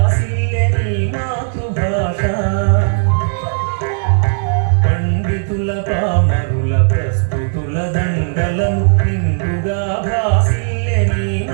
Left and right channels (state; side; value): silent; left; 66 dB below the other